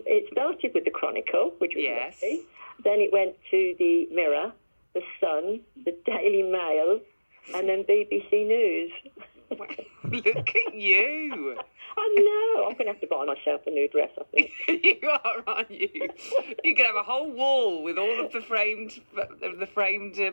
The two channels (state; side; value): inverted; both; correlation -1.00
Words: started with the Chronicle, which was Yes. lovely. Then it went to the Mirror, the Sun, the Daily Mail, and then BBC News. Look at you. I know. I'm going to have to buy myself a new dress, I think. You are, aren't you? You could have a whole wall with all of the framed